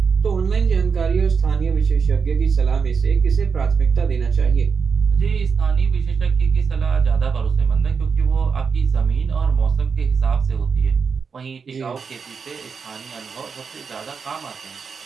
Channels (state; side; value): quieter; left; 5.7 dB